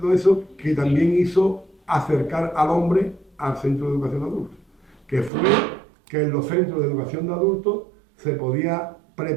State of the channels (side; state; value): left; drops out; at 5.3 s